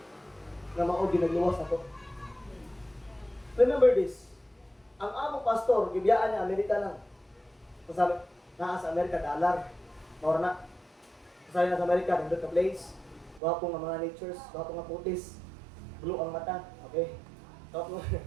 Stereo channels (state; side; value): drops out; left; at 13.4 s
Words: na maogi nagluwas ako. Remember this, ang among pastor, gibiyaan niya, Amerika lang. Kasabi, naa sa Amerika, dollar, maura na. Kasabi na sa Amerika, nandun ka place, wapo nga mga natures, wapo nga putis, blue ang mata, okay? Wapo,